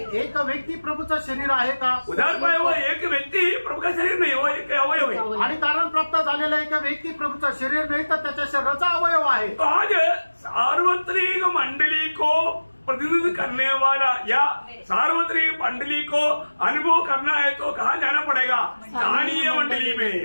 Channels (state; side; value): inverted; both; correlation -1.00